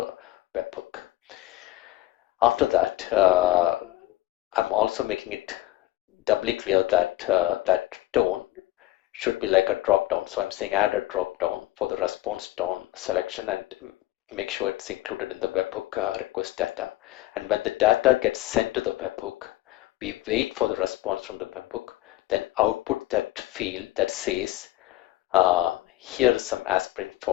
webhook. After that, I'm also making it doubly clear that that tone should be like a drop down. So I'm saying add a drop down for the response tone selection and make sure it's included in the webhook request data. And when the data gets sent to the webhook, we wait for the response from the webhook, then output that field that says here is some aspirin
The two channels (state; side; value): quieter; right; 16.7 dB